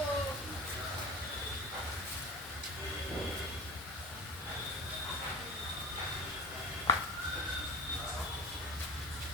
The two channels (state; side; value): normal; both; correlation 0.31